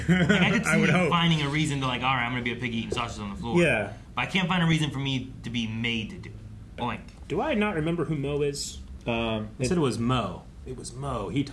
Like, I could see I would me hope. finding a reason to, like, all right, I'm going to be a piggy eating sausage on the floor. Yeah. But I can't find a reason for me to be made to do it. Boink. Do I not remember who Mo is? I said it was Mo. It was Mo. He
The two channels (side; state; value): both; identical; correlation 1.00